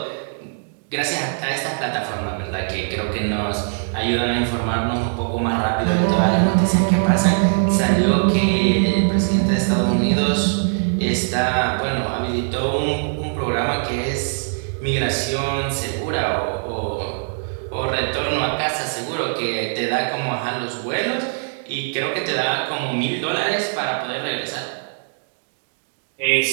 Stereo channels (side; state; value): left; silent; digital silence